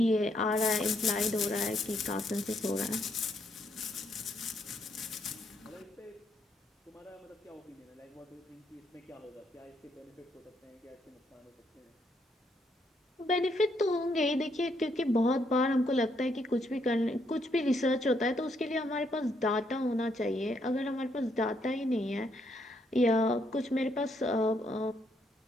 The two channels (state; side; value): normal; both; correlation 0.74